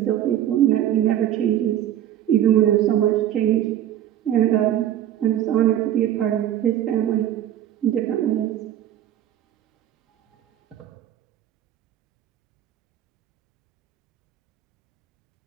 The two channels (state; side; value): quieter; left; 11.5 dB